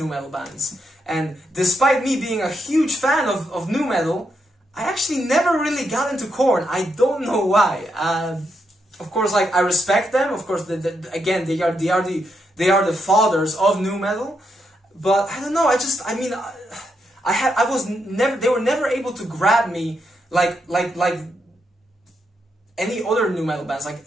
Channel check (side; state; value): both; normal; correlation 0.81